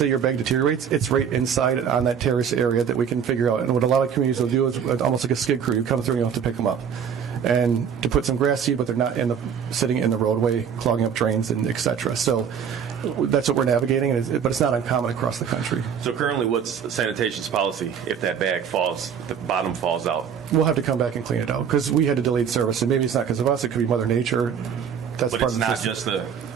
your bag deteriorates, it's right inside on that terrace area that we can figure out. And what a lot of communities will do is almost like a skid crew. You come through and you have to pick them up. And to put some grass seed, but they're not sitting in the roadway, clogging up drains, and et cetera. So that's what we're navigating, but it's not uncommon across the country. So currently, what's sanitation's policy if that bag falls, the bottom falls out? We'll have to come back and clean it out because we had a delayed service. And maybe it's not because of us. It could be Mother Nature. That's but part it's of the not system. just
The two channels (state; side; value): quieter; left; 7.6 dB